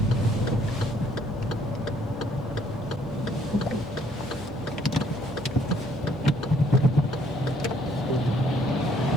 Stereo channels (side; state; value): both; normal; correlation 0.65